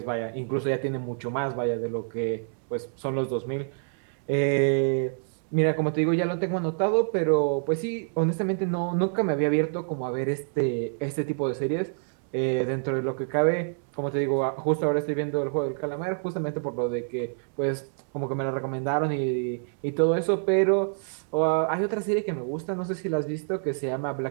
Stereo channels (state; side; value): silent; left; digital silence